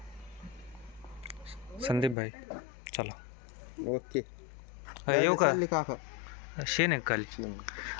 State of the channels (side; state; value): right; drops out; at 2.1 s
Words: संदीप भाई चला. ओके. येऊ का? काका शेन आहे खाली.